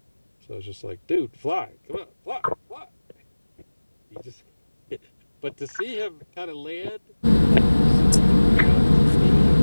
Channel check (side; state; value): both; inverted; correlation -1.00